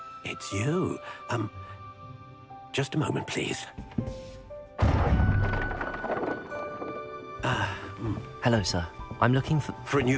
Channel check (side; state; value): both; identical; correlation 1.00